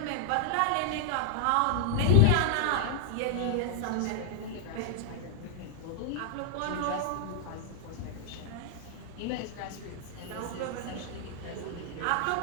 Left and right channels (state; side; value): different; both; correlation 0.00